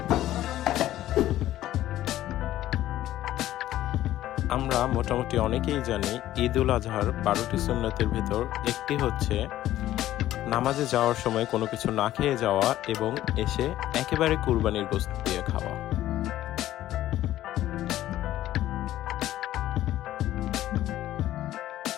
আমরা মোটামুটি অনেকেই জানি ঈদ উল আজহার 12টি সুন্নতের ভিতর একটি হচ্ছে নামাজে যাওয়ার সময় কোনো কিছু না খেয়ে যাওয়া এবং এসে একেবারে কুরবানির গোশত দিয়ে খাওয়া।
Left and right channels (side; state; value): right; quieter; 13.8 dB